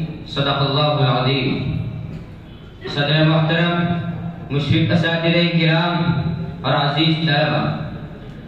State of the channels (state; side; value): identical; both; correlation 1.00